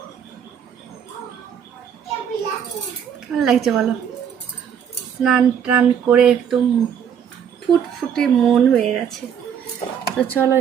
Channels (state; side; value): quieter; left; 8.2 dB